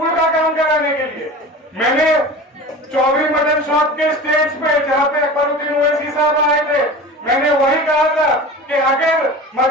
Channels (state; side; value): normal; both; correlation 0.35